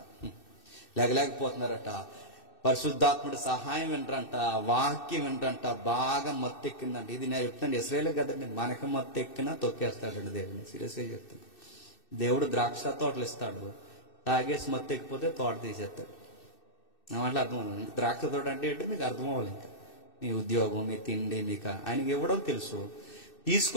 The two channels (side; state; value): right; late; 2.6 ms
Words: లేకపోతున్నారట. పరిశుద్ధాత్ముడి సహాయం వినరంట, వాక్యం వినరంట, బాగా మత్తెక్కిందంట. ఇది నేను చెప్తాను, ఇశ్రాయేల్ కదండి, మనకు మత్తెక్కినా తొక్కేస్తాడండి దేవుని. సీరియస్గా చెప్తాను. దేవుడు ద్రాక్ష తోటలు ఇస్తాడు, తాగేసి మత్తెక్కిపోతే తోట తీసేస్తాడు. నా మాటలు అర్థమవుతుంది. ద్రాక్ష తోట అంటే ఏంటో మీకు అర్థం అవ్వాలి. ఇంకా మీ ఉద్యోగం, మీ తిండి మీకు ఆయనకి ఇవ్వడం తెలుసు.